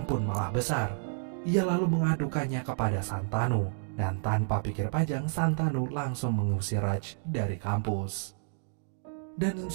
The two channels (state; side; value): silent; left; digital silence